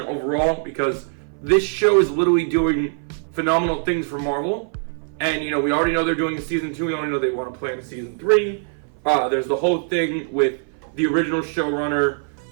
overall, because this show is literally doing phenomenal things for Marvel. And, you know, we already know they're doing a season 2. We already know they want to plan a season 3. There's the whole thing with the original showrunner,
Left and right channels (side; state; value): left; silent; 58 dB below the other